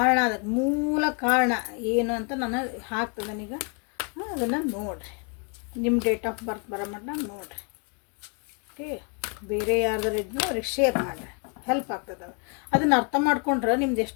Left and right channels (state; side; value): quieter; right; 36.5 dB